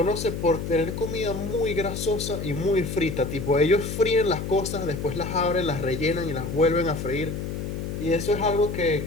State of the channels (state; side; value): noise; left; hum, 5 dB below the sound